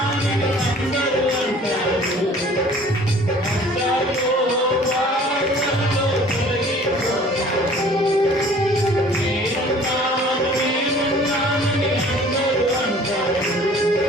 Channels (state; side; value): normal; both; correlation 0.51